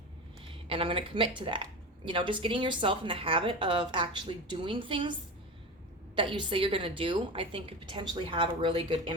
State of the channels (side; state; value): both; normal; correlation 0.26